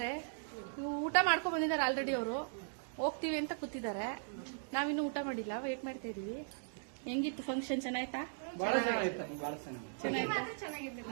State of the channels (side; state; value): left; silent; digital silence